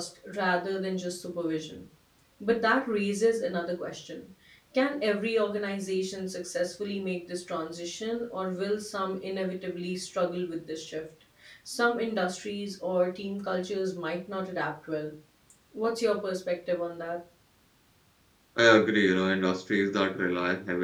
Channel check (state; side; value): identical; both; correlation 1.00